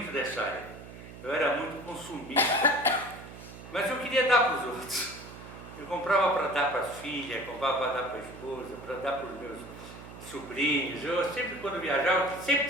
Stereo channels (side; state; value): right; noise; hum, 15 dB below the sound